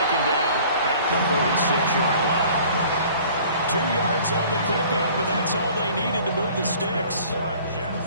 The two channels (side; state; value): both; inverted; correlation -0.50